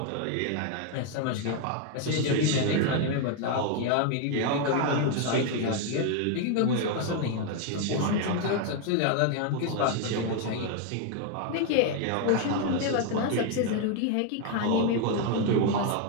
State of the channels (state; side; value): different; both; correlation 0.01